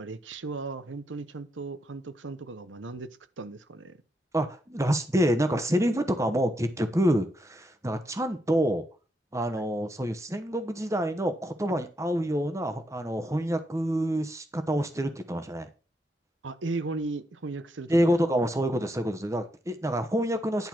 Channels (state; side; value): normal; both; correlation 0.80